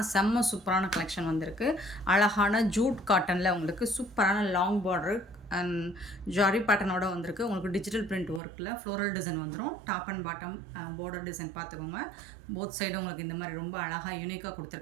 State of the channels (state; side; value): drops out; left; at 8.4 s